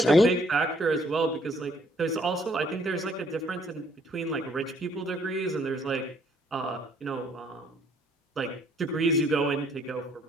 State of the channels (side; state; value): both; normal; correlation 0.64